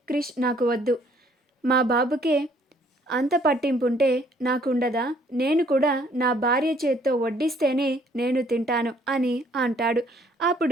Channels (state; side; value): normal; both; correlation 0.62